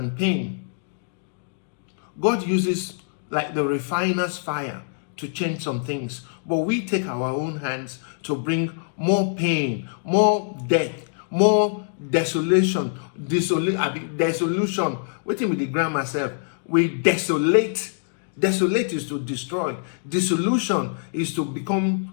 pain, God uses like the refiner's fire to change some things. But we take our own hands to bring more pain, more death, more desolation. Dissolution. Waiting with the grammar myself. We desolate Desolate is to destroy. Dissolution is to become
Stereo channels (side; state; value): right; silent; digital silence